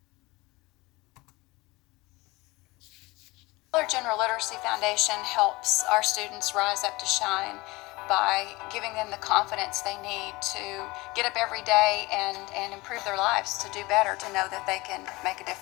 Dollar General Literacy Foundation helps our students rise up to shine by giving them the confidence they need to get up every day and improve their lives, to do better, to know that they can make a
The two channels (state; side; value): quieter; right; 22.2 dB